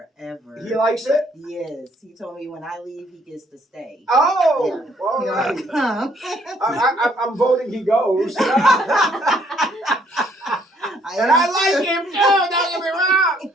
He likes it? Yes, he told me when I leave, he gets to stay. Oh, Yeah. all right. You know, I'm voting he goes. And I like him too, don't get me wrong.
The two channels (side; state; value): both; normal; correlation 0.65